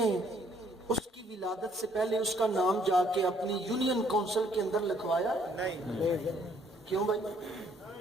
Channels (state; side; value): normal; both; correlation 0.65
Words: اس کی ولادت سے پہلے اس کا نام جا کے اپنی یونین کونسل کے اندر لکھوایا؟ نہیں۔ کیوں بھائی؟